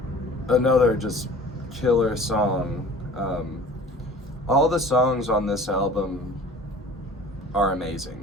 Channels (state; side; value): normal; both; correlation 0.44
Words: another just killer song. All the songs on this album are